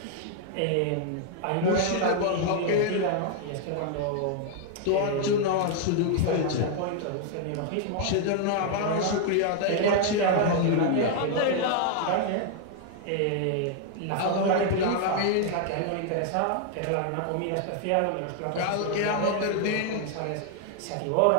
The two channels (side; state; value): both; different; correlation 0.00